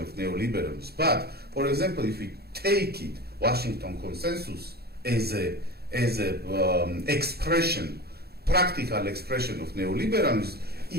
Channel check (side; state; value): left; late; 0.46 ms